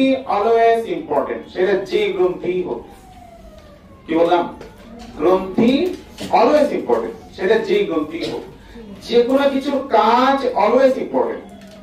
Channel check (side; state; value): both; identical; correlation 1.00